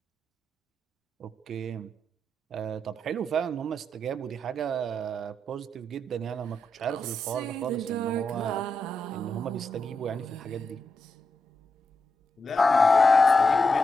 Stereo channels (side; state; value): both; normal; correlation 0.85